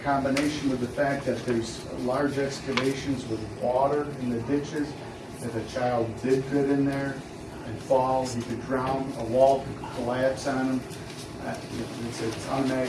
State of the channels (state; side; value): identical; both; correlation 1.00